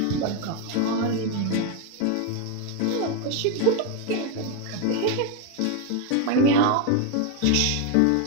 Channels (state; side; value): different; both; correlation 0.01